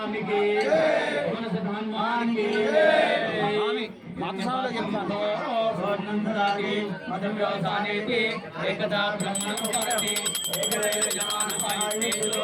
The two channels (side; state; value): both; identical; correlation 1.00